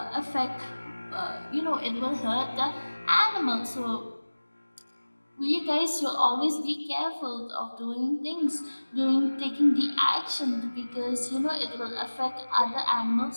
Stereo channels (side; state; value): both; inverted; correlation -1.00